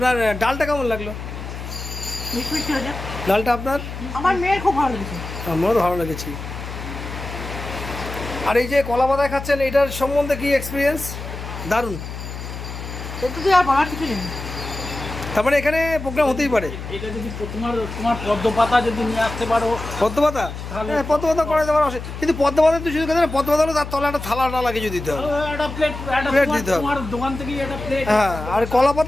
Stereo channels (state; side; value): noise; left; hum, 9 dB below the sound